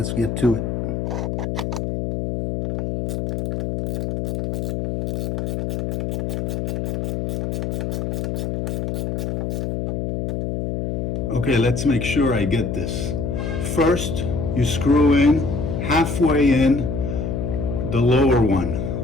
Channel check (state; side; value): noise; left; hum, 2 dB below the sound